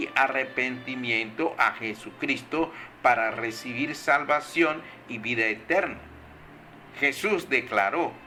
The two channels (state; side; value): identical; both; correlation 1.00